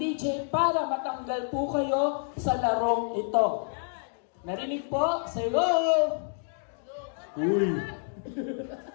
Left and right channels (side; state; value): right; silent; digital silence